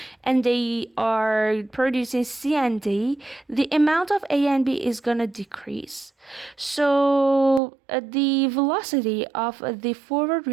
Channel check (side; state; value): left; drops out; at 7.6 s